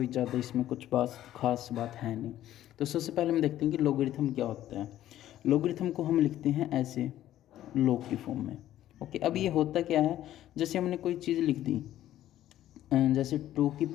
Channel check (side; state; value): right; quieter; 12.9 dB